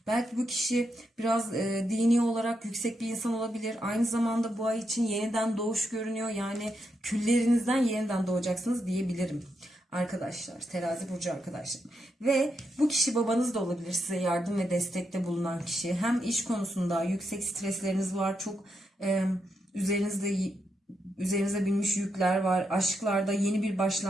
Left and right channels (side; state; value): both; normal; correlation 0.83